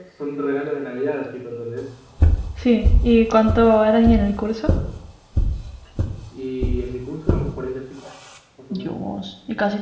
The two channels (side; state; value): both; identical; correlation 1.00